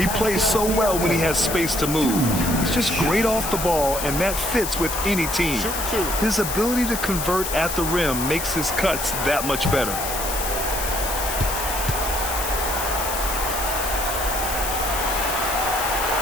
plays so well when he has space to move. He's just great off the ball, and that fits with any team. His ability to convert at the rim makes his cuts that much better.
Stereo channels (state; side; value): noise; left; hiss, 4 dB below the sound